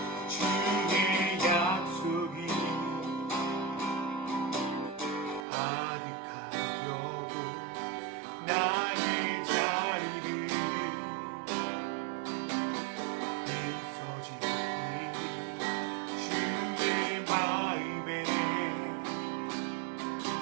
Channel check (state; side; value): drops out; left; at 5.5 s